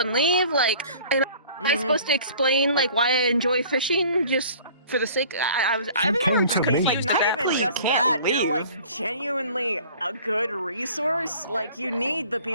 leave? Like, am I supposed to explain, like, why I enjoy fishing just for the sake? I was Not even Exactly, just you can't that, you're leave. like genuinely a good resource. Like you need the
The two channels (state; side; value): inverted; both; correlation -0.49